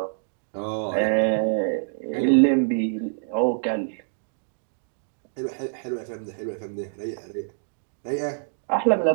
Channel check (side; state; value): left; silent; digital silence